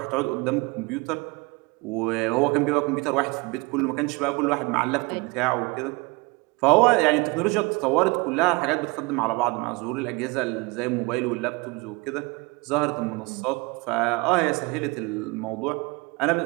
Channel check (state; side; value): quieter; left; 26.7 dB